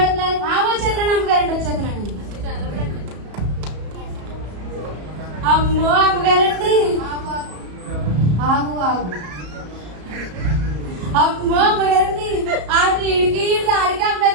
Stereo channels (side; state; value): left; late; 34 ms